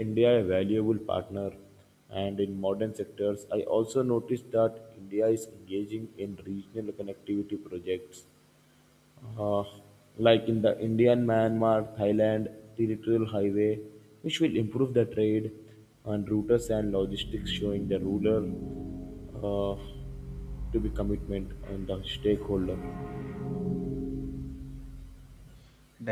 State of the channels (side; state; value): both; identical; correlation 1.00